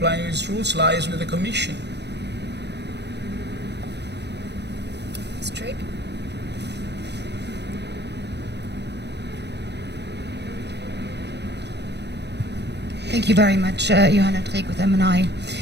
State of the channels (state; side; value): late; left; 0.50 ms